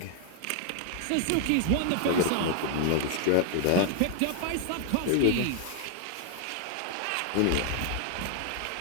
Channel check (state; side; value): different; both; correlation 0.00